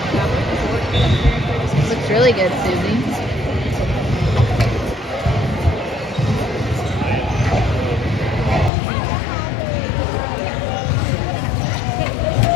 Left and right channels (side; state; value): right; drops out; at 8.7 s